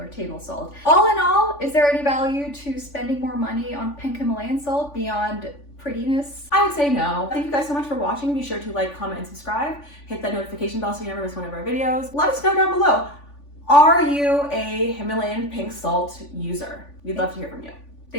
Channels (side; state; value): right; late; 3.5 ms